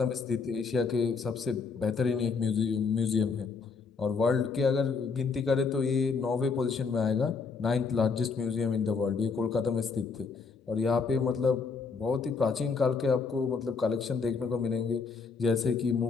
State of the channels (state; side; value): quieter; right; 4.9 dB